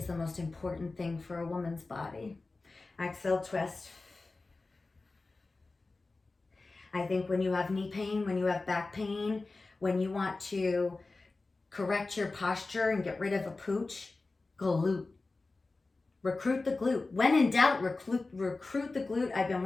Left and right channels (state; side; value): quieter; right; 3.5 dB